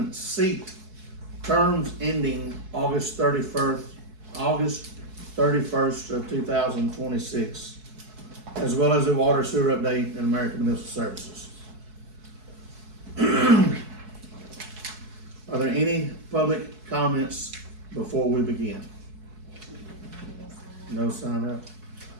seat terms ending August 31st of 2026, as well as a water sewer update in American Municipal Services. Are there any public comments before we begin? No sign up?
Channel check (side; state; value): left; late; 4.7 ms